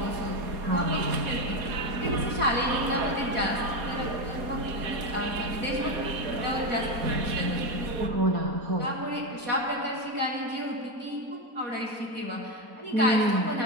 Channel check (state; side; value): late; left; 4.2 ms